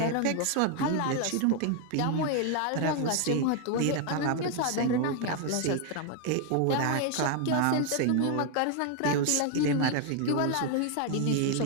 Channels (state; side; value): different; both; correlation 0.00